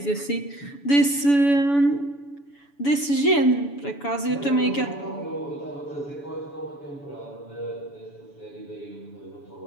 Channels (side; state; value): right; late; 7.0 ms